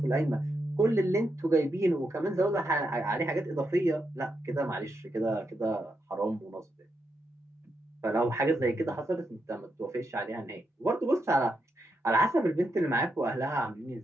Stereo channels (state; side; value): normal; both; correlation 0.82